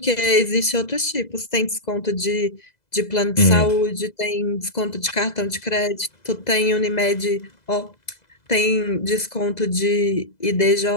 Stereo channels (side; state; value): right; late; 2.0 ms